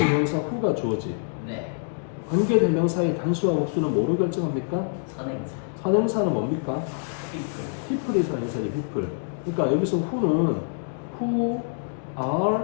who가 주어지 네. 관계대명사의 단수와 복수는 뭐로 결정합니까? 선행사. 선행사는 뭡니까? people. people이 선행사예요 people 그러니까 여기서 who는 who are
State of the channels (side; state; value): right; silent; digital silence